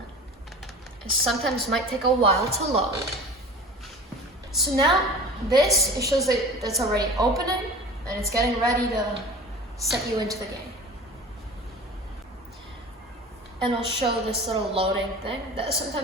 It sometimes might take a while to load. So now, it shows that it's already opening, and it's getting ready to set you into the game. And it'll show this little loading thing that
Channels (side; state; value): both; normal; correlation 0.38